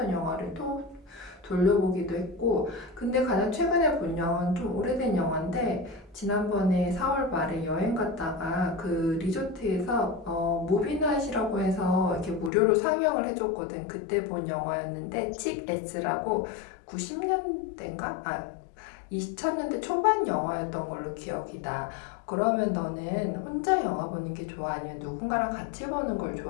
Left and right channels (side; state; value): right; drops out; at 12.5 s